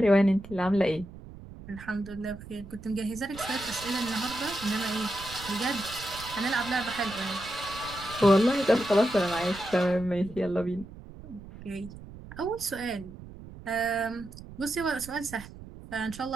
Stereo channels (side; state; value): right; noise; rumble, 15 dB below the sound